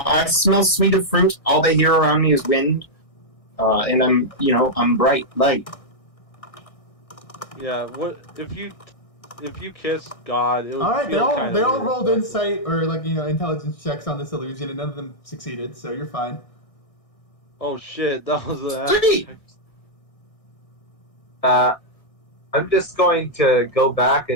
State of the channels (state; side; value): late; right; 1.6 ms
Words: I smell sweet of fruit. All they hear around me is wind. And I'm bright light. Yeah, what if you kiss God? It would All right, feel they all weird. rolled insight or, like, you know, intelligence checks on this illusion, and none of them succeeded, so you're fine. Oh shit, that was a. Sweet! I'm just going to go back